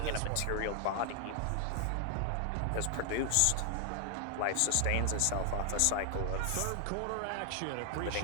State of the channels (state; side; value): different; both; correlation 0.00